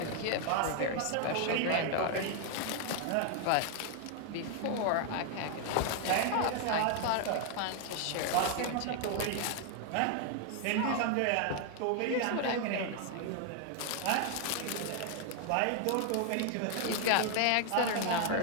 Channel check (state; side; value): different; both; correlation 0.00